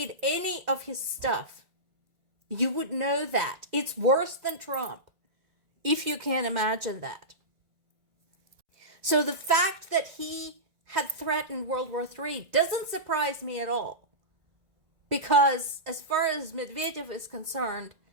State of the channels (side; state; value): left; late; 2.0 ms